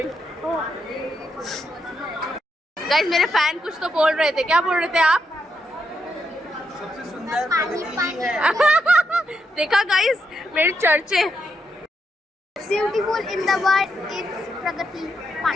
गाइस मेरे फैन कुछ तो बोल रहे थे, क्या बोल रहे थे आप? सबसे सुंदर देखा गाइस मेरे चर्चे। Beautiful in the world is Pragati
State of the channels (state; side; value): normal; both; correlation 0.82